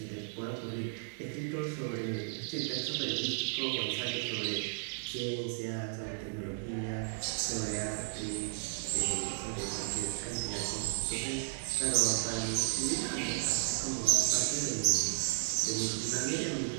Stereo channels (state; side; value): silent; left; digital silence